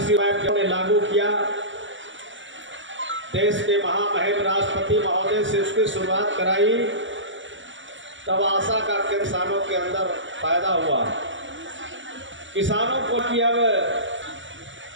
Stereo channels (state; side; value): late; left; 0.55 ms